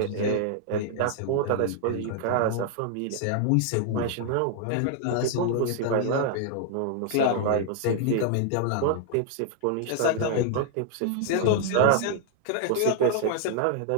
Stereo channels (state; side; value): different; both; correlation 0.00